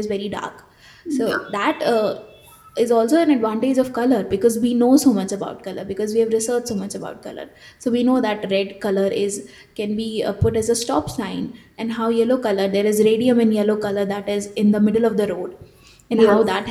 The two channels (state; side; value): identical; both; correlation 1.00